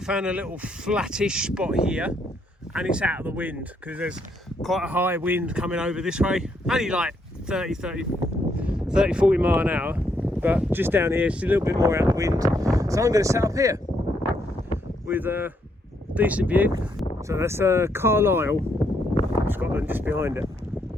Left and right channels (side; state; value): both; normal; correlation 0.75